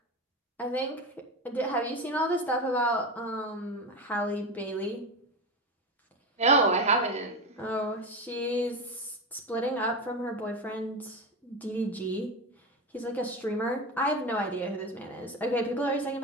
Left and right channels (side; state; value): both; normal; correlation 0.21